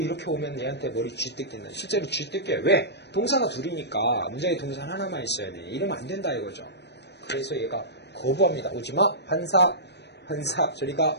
오면 얘한테 머리 쥐뜯긴다. 실제로 쥐뜯겨요. 왜? 동사가 둘이니까 문장에 동사 하나만 있어야 돼. 이러면 안 된다 이거죠. 그래서 얘가 거부합니다. 오지마. 환사 저리가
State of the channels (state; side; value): late; right; 0.50 ms